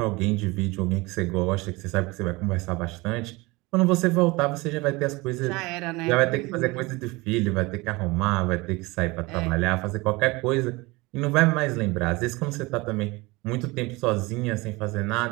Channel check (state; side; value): quieter; left; 23.4 dB